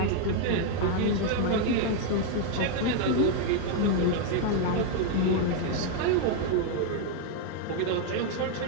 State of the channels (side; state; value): both; different; correlation 0.00